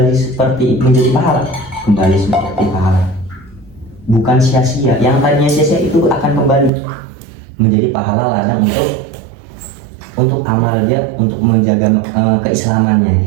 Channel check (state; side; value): drops out; left; at 6.7 s